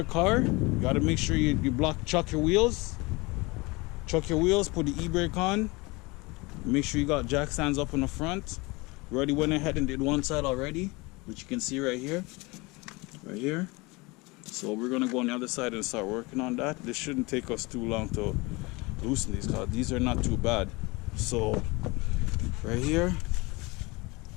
car, you got to make sure you chuck your wheels. Chuck your wheels, put the e-brake on. Make sure you got jack stands up in the front. We already went ahead and did one side already, which you can see right here. Right here. So we're going to go on the other side and start working on that. This shouldn't take us too long to loosen these because these are not too bad. So right here,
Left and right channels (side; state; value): right; quieter; 24.8 dB